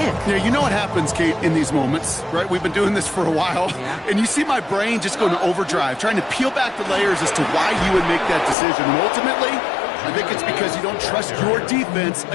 Yeah, you know what happens, Kate, in these moments, right? We've been doing this for a while, and you see my brain just going to overdrive, trying to peel back the layers as to why you would make that decision. And ultimately, I think it's because you don't trust your defense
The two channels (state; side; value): drops out; right; at 8.6 s